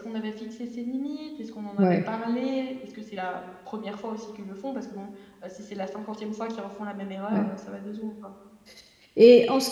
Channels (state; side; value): identical; both; correlation 1.00